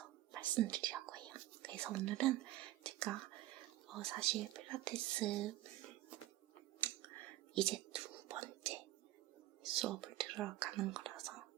말씀드리려고 해요. 그래서 오늘은 제가 사실 필라테스 이제 2번째 수업을 들으러 가는 거라서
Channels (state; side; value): quieter; left; 15.4 dB